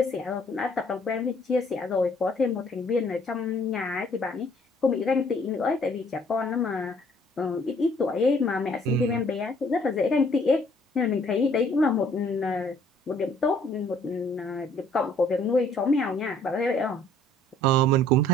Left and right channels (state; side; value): normal; both; correlation 0.60